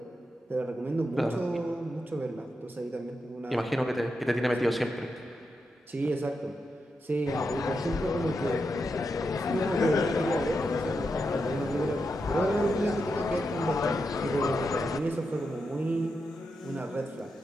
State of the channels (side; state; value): both; normal; correlation 0.86